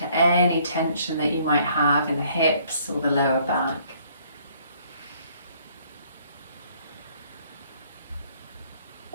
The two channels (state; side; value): inverted; both; correlation -0.63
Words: any tension that you might have in the hips or the lower back.